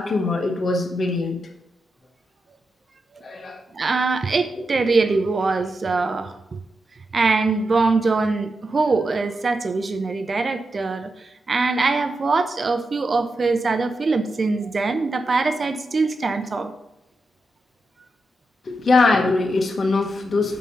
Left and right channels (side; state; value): both; normal; correlation 0.87